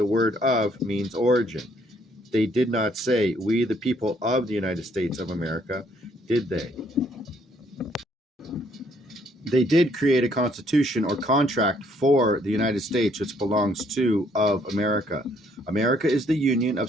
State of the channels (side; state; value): both; normal; correlation 0.67